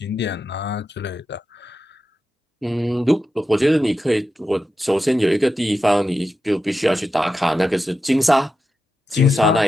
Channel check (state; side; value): normal; both; correlation 0.90